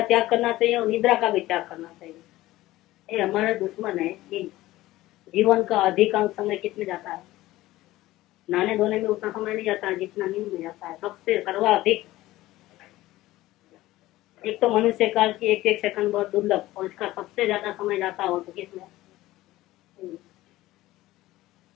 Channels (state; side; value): quieter; right; 16.9 dB